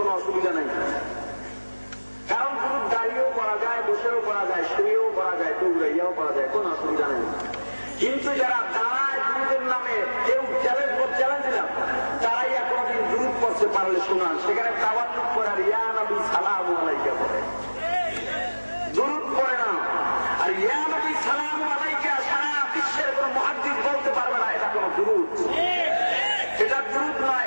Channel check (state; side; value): inverted; both; correlation -1.00